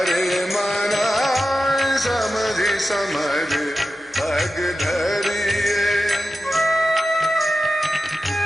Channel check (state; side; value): normal; both; correlation 0.93